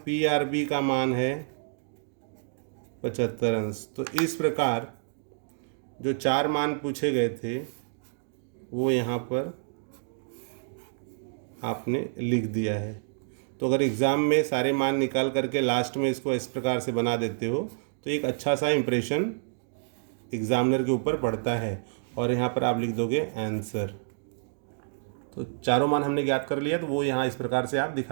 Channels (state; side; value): silent; left; digital silence